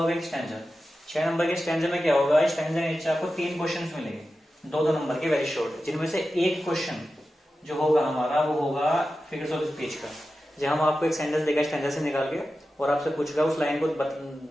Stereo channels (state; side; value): normal; both; correlation 0.93